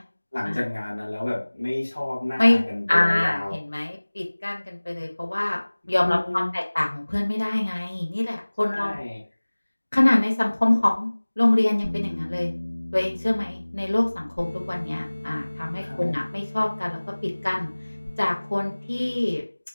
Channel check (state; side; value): inverted; both; correlation -1.00